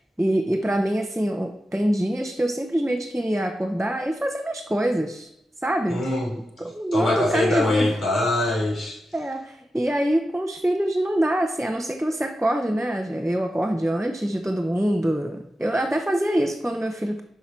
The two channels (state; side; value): normal; both; correlation 0.91